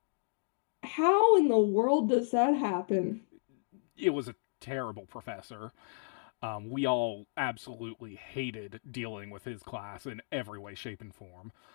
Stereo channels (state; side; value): silent; right; digital silence